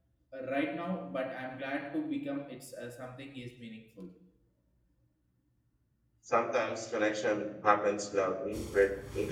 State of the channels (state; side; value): identical; both; correlation 1.00